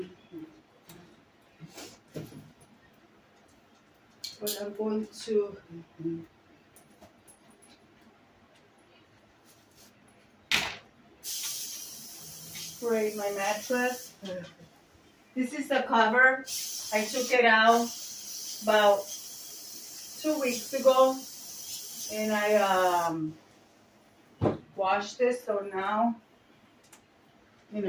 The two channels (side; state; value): both; identical; correlation 1.00